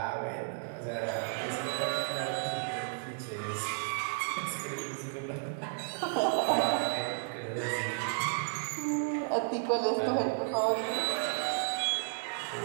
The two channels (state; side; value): silent; left; 56 dB below the other